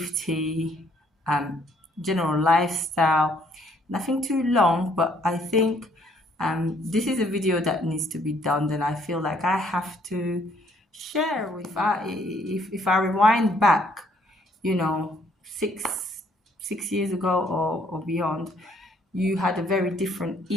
um, general lifestyle. Nothing too long, but I think this is a video that needs to be done. Then I feel like I have to share. If I rewind back, you know, six years ago or beyond, you had a very different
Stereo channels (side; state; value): both; normal; correlation 0.65